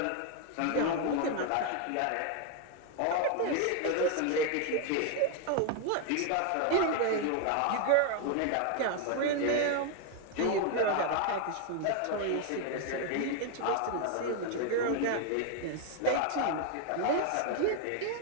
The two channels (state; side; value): different; both; correlation 0.01